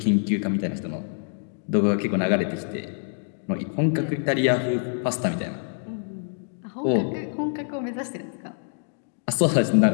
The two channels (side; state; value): right; silent; digital silence